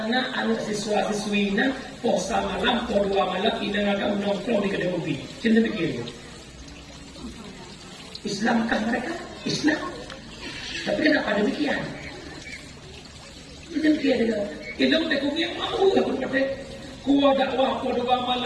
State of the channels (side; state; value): both; identical; correlation 1.00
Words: na anak siswa-siswi na posa malam po 2 malam ina nga nongkrong di kedai kopi. Cinta fikir. Islamkah mereka? Islam. Tapi kenapa demikian? Demikian dia. Elok tak kuyo mau aku kata. Kuo dakwah po 2